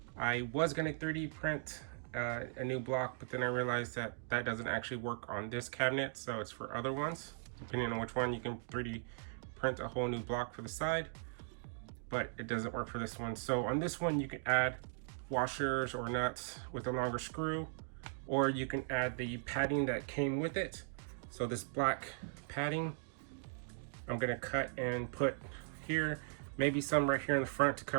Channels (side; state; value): left; silent; digital silence